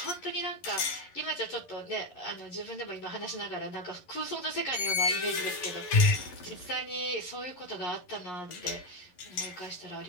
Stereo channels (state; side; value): late; right; 11 ms